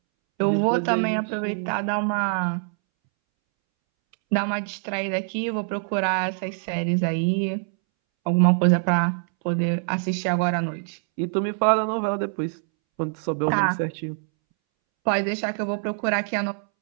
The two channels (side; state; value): left; silent; 62 dB below the other